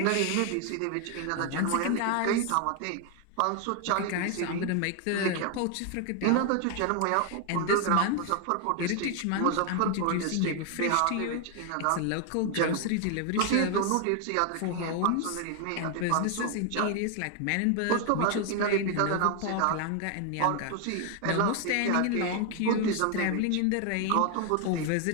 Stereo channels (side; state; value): both; different; correlation 0.01